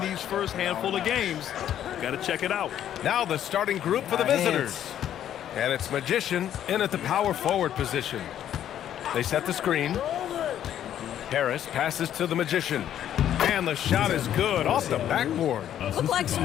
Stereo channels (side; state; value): right; quieter; 10.7 dB